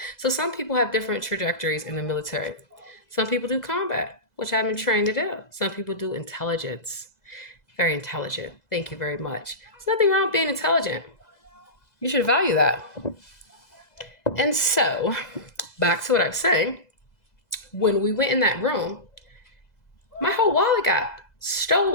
so some people have different trajectories in the military. Some people do combat, which I've been trained to do. Some people do intelligence. Very intelligent. Thank you very much. There's nothing wrong with being intelligent. You should value that. And so, back to what I was saying. When we went in that room, my whole wallet got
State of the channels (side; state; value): right; late; 2.0 ms